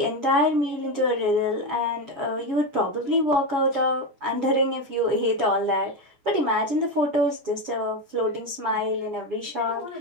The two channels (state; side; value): late; left; 7.1 ms